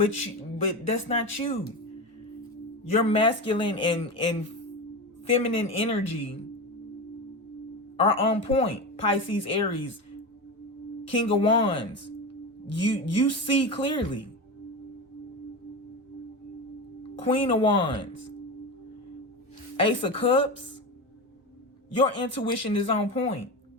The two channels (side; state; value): both; normal; correlation 0.22